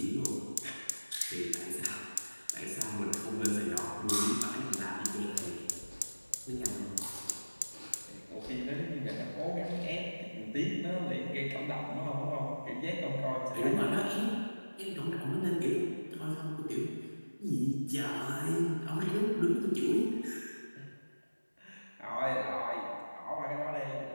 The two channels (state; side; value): inverted; both; correlation -1.00